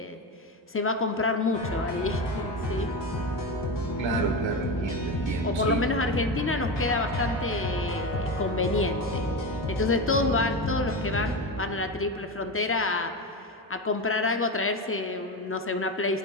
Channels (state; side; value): normal; both; correlation 0.19